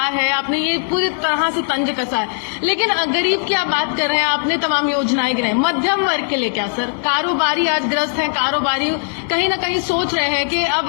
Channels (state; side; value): silent; right; digital silence